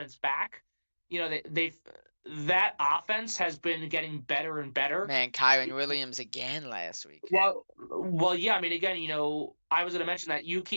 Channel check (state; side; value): inverted; both; correlation -1.00